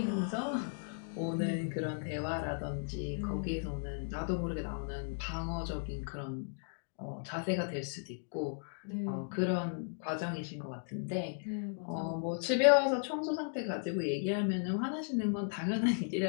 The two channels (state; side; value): silent; right; digital silence